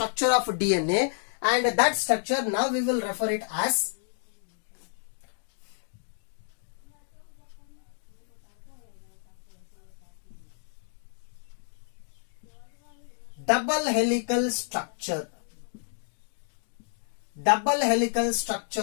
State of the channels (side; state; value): right; silent; digital silence